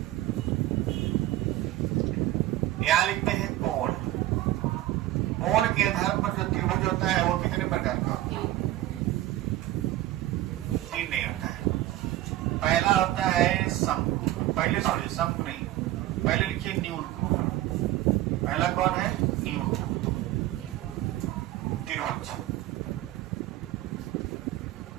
यहाँ लिखते हैं कोण। कोण के आधार पर जो त्रिभुज होता है वो कितने प्रकार का होता है? 3 नहीं होता है। पहला होता है शंकु, पहले छोड़िए शंकु नहीं, पहले लिखिए न्यून। पहला कौन है? न्यून त्रिभुज।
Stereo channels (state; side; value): quieter; left; 15.2 dB